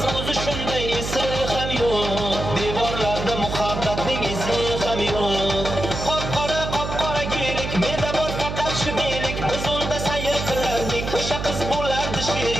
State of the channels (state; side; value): noise; right; hum, 5 dB below the sound